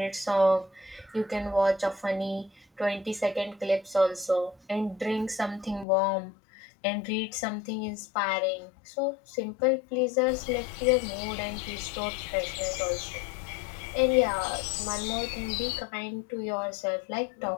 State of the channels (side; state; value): right; drops out; at 5.9 s